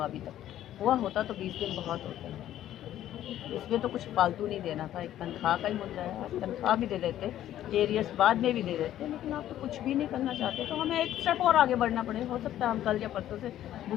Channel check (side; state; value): right; quieter; 12.3 dB